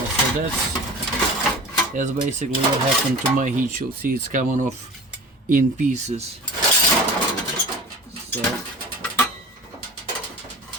so that's basically what happened to my heat shield. See, it's coming off in pieces. So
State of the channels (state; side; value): normal; both; correlation 0.37